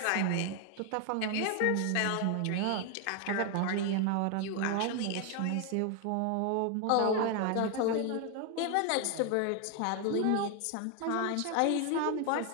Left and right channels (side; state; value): both; different; correlation 0.01